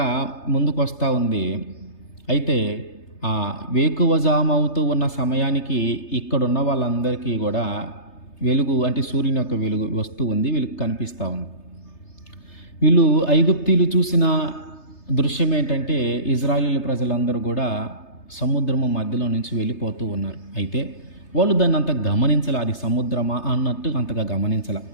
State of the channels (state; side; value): late; right; 3.3 ms